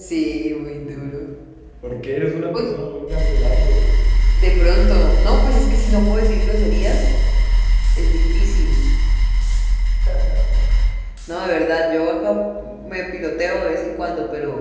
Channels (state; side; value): identical; both; correlation 1.00